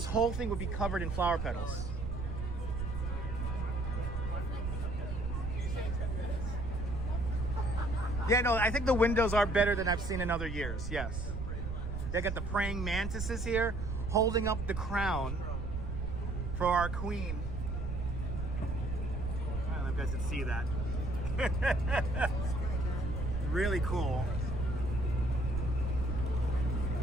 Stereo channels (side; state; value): right; noise; rumble, 3 dB below the sound